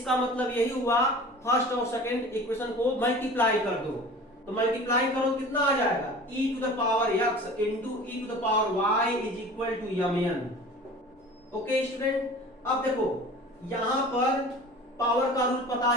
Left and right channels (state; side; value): normal; both; correlation 0.41